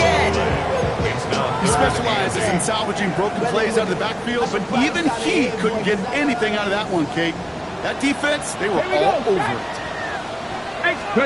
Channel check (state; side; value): identical; both; correlation 1.00